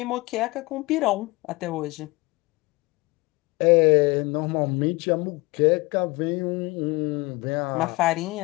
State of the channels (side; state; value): right; quieter; 23.5 dB